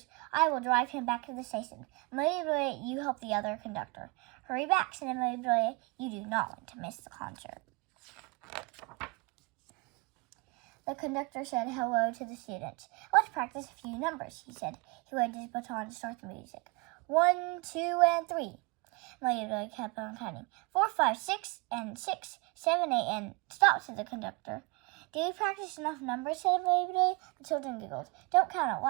"I will drive him back to the station. Amelia Bedelia, you help the other conductor." "Hurry back," said Amelia Bedelia. "You do not want to miss the concert." The conductor said hello to the students. "Let's practice a few numbers," he said. He waved his baton to start the music. 1, 2, and 3. Amelia Bedelia kept on counting. 4, 5, 6, and 6, 7, 8, and stop, said the conductor. "Did we practice enough numbers?" said Amelia Bedelia. The children giggled. "Don't count out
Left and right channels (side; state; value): left; quieter; 28.3 dB